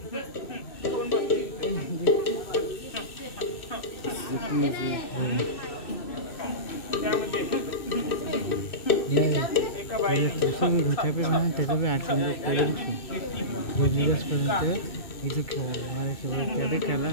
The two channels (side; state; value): right; late; 2.6 ms